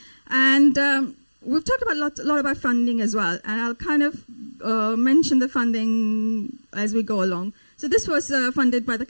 And we've talked about a lot about funding as well, and I'll kind of mention the funding as we go along. So this was funded by the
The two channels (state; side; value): inverted; both; correlation -1.00